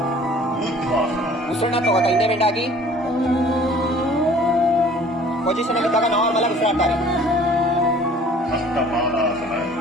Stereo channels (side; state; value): both; normal; correlation 0.51